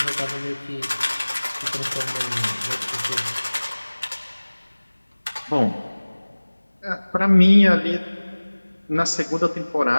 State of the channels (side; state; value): both; inverted; correlation -1.00